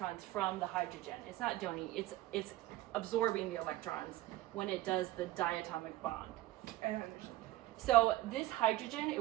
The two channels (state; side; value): quieter; left; 16.5 dB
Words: from the hydrogen. It's not donating. It's absorbing the electrons when it does the diatomic bond. I don't understand. So this hydrogen,